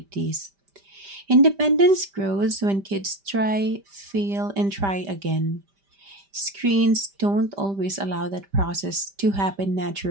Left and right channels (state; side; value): late; left; 5.1 ms